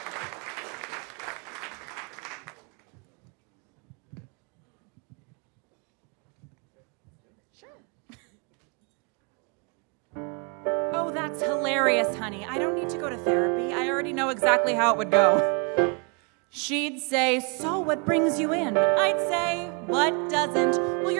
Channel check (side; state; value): left; quieter; 33.4 dB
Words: Oh, that's hilarious, honey. I don't need to go to therapy. I already know exactly how it would go. She'd say, so what brings you in? I'd say, what doesn't? Well,